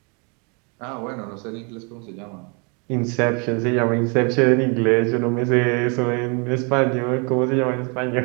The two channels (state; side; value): quieter; left; 33.9 dB